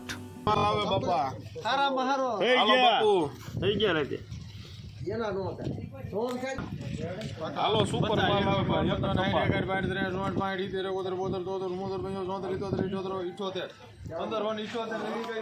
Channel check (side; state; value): both; identical; correlation 1.00